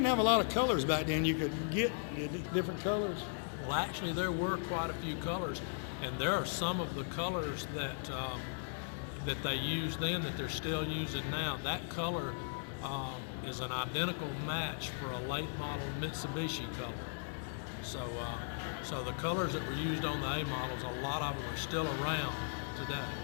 have a lot of colors back then. You could get different colors. Well, actually, there were quite a few colors, and there are some of the colors that that they used then that they're still using now. That color is an identical match for a late model Mitsubishi color. So, so the colors that were used on the A models, a lot of them are still around today.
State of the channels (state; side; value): silent; right; digital silence